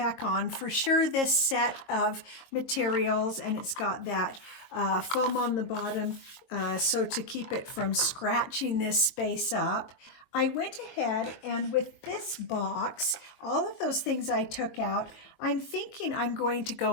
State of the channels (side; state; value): right; late; 22 ms